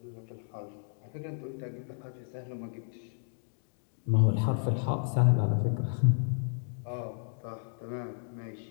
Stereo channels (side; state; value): right; silent; digital silence